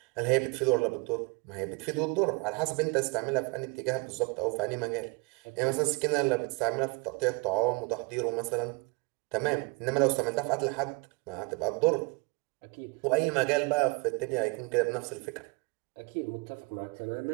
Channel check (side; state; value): left; quieter; 29.9 dB